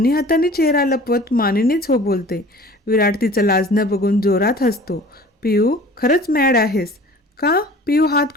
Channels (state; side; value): normal; both; correlation 0.45